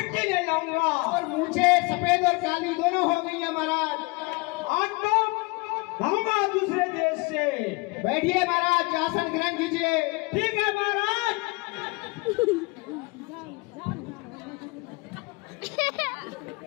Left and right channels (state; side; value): quieter; right; 27.1 dB